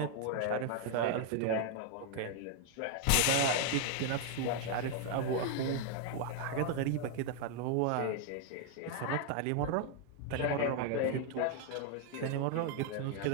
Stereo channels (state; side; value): different; both; correlation 0.00